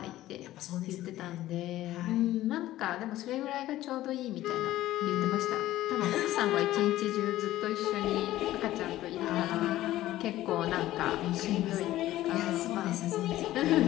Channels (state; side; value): quieter; right; 14.9 dB